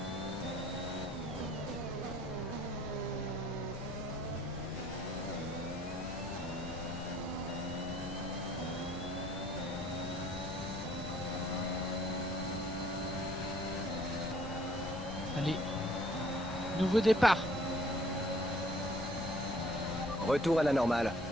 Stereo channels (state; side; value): noise; left; rumble, 11 dB below the sound